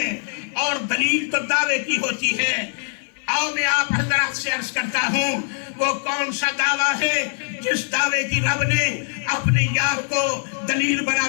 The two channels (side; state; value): right; silent; 60 dB below the other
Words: اور دلیل تو دعوے کی ہوتی ہے. آؤ میں آپ حضرات سے عرض کرتا ہوں وہ کون سا دعویٰ ہے جس دعوے کی رب نے اپنے یار کو دلیل بنا